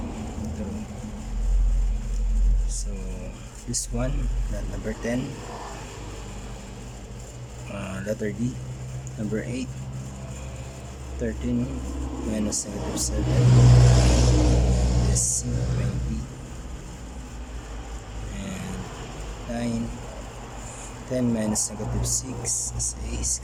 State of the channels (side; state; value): both; identical; correlation 1.00